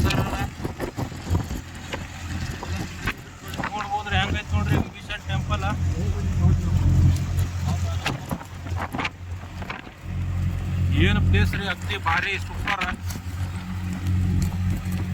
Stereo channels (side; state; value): both; identical; correlation 1.00